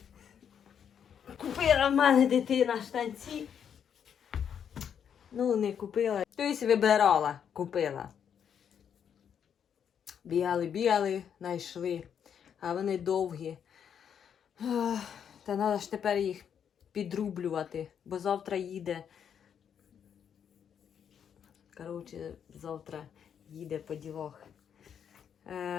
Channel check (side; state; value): right; quieter; 8.2 dB